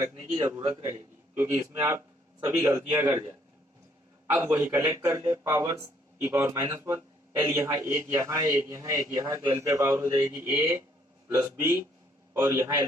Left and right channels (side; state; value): both; normal; correlation 0.66